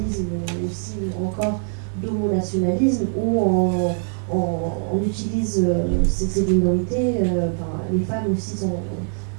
aussi, ou encore d'homonationalisme, où on utilise ces minorités, les femmes aussi sont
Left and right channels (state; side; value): silent; left; 57 dB below the other